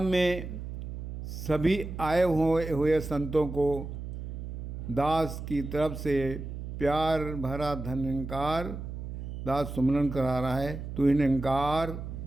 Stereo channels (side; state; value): right; noise; hum, 8 dB below the sound